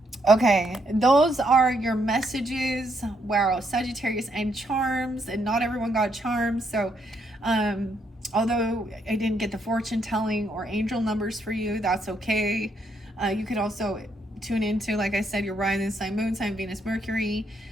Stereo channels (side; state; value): both; normal; correlation 0.75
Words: Okay, those are your messages. Wow, Sagittarius and charms, and not everyone got charms. So, although I didn't get the fortune telling or angel numbers for you, that's okay. You could also tune into, like I said, your rising sign, moon sign, Venus, Mercury,